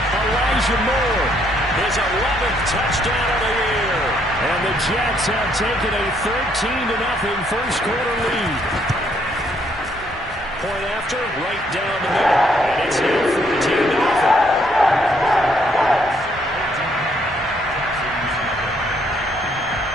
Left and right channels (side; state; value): both; normal; correlation 0.70